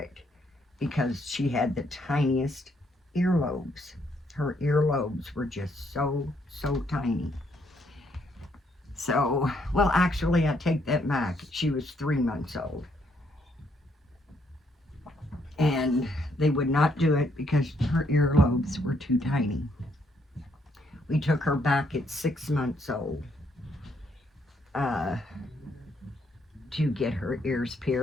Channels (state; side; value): normal; both; correlation 0.72